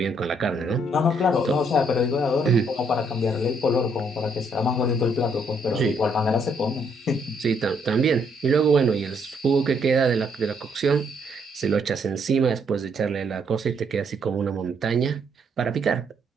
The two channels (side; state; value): both; normal; correlation 0.71